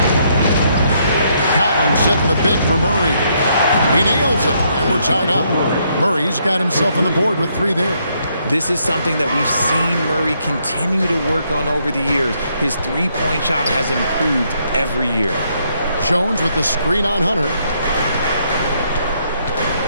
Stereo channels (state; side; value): inverted; both; correlation -0.73